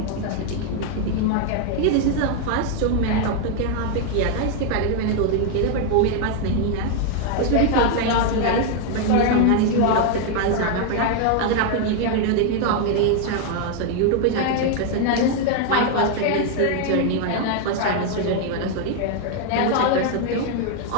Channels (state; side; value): different; both; correlation 0.00